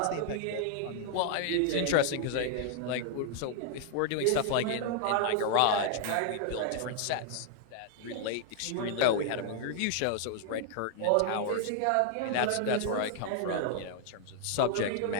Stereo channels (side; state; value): both; different; correlation -0.01